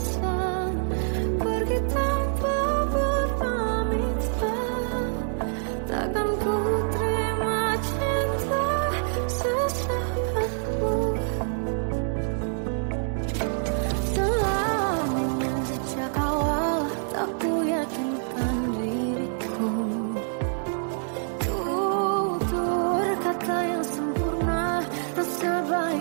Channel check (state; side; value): silent; left; digital silence